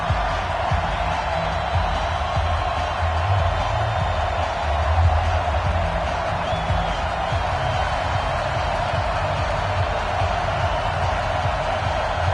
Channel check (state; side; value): identical; both; correlation 1.00